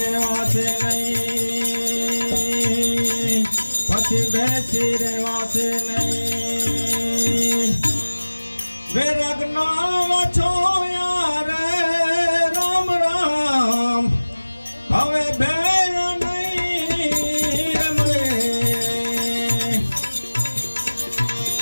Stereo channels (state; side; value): inverted; both; correlation -1.00